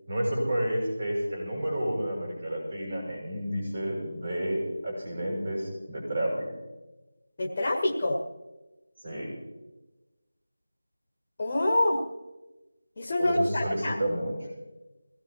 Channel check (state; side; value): inverted; both; correlation -0.95